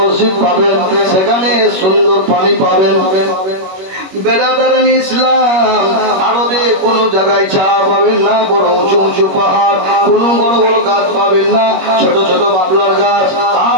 পাবেন, সেখানে সুন্দর পানি পাবেন। বেরাদারান ইসলাম, আরবে কোন জায়গায় ছায়া পাবেন না, বড় উঁচু উঁচু পাহাড়, কোন বড় বড় গাছ পাবেন না, ছোট ছোট বাবলার গাছ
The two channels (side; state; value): left; late; 21 ms